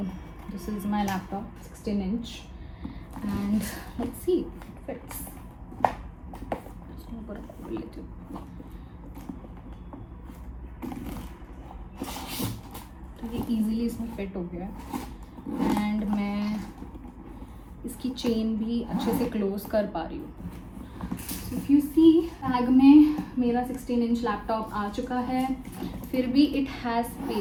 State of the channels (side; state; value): both; identical; correlation 1.00